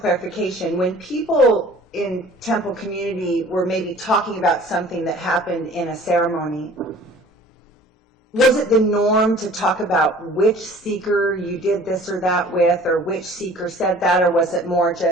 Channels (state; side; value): normal; both; correlation 0.48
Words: when people in temple community were maybe talking about something that happened in a ceremony, was it the norm to talk about which seeker you did this or that with, or which seeker said that, or was it more